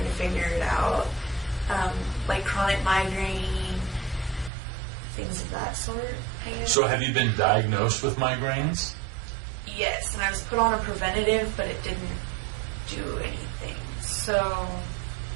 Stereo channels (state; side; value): drops out; left; at 4.5 s